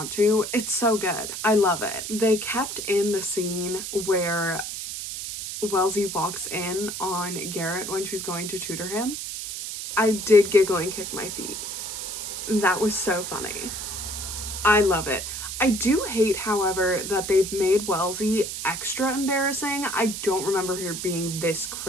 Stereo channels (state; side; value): noise; right; hiss, 6 dB below the sound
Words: to, it's so good. I love it. They kept in the scene where Wellesley walks in on Garrett when she's going to tutor him. I did giggle and kick my feet. That was so funny. I love it. I do hate, however, that they've made Wellesley extra embarrassing. I don't remember her being this